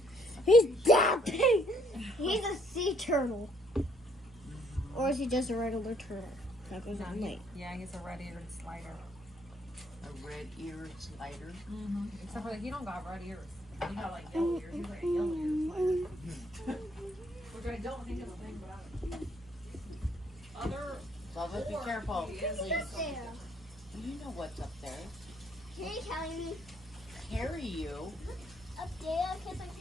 He's that big. He's a sea turtle. Or is he just a regular turtle? That goes on late. Yeah, he's a red-eared slider. A red-eared slider. Mm-hmm. Except for that he don't got red ears. He got like yellow ears. He's like a yellow eared slider. Which I don't think is a thing, but other. Bubba, be careful, please. There. You know what's up there. Can you carry me Carry you. up there? Because I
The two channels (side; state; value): both; normal; correlation 0.66